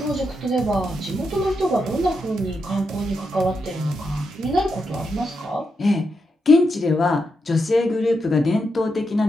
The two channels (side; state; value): both; normal; correlation 0.84